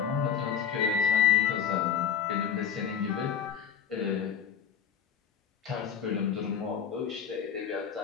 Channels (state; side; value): quieter; right; 8.1 dB